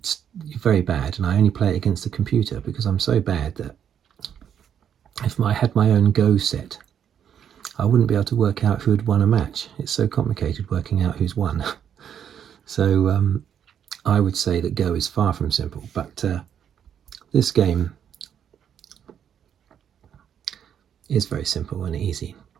very bad, and I only play it against the computer because I'm so bad that if I had my own Go set, I wouldn't be able to work out who had won a match. It's so complicated working out who's won. So I would say that Go is far from simple, but this game is very simple and easy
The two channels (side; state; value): left; quieter; 8.8 dB